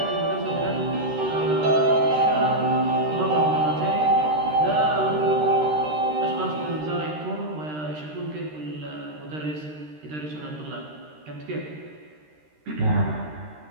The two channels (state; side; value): late; left; 13 ms